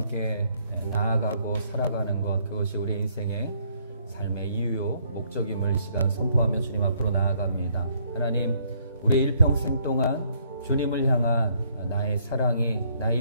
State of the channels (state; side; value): inverted; both; correlation -0.67